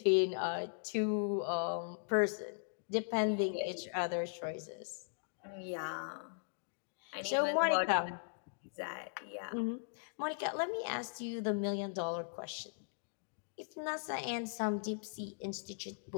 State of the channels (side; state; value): right; silent; digital silence